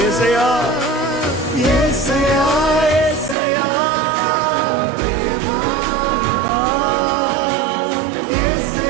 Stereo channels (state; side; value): drops out; left; at 3.4 s